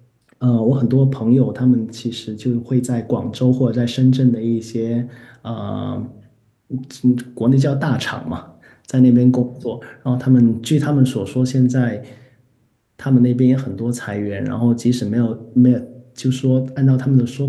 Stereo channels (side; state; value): both; identical; correlation 1.00